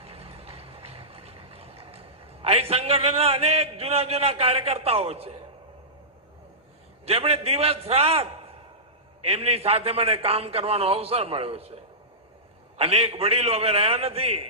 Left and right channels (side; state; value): both; normal; correlation -0.18